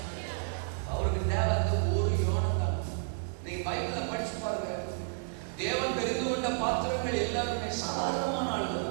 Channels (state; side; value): silent; left; digital silence